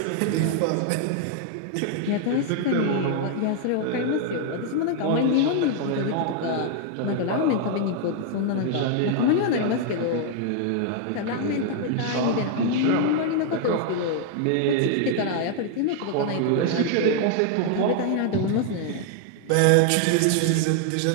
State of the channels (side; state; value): both; different; correlation 0.00